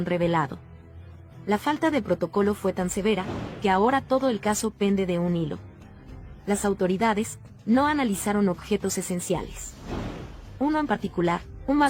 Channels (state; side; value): identical; both; correlation 1.00